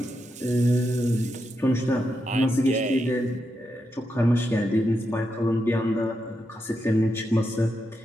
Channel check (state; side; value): normal; both; correlation 0.85